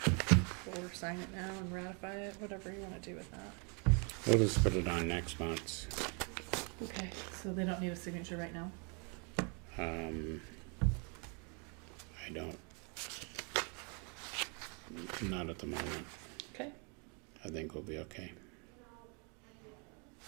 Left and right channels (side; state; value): left; quieter; 35.7 dB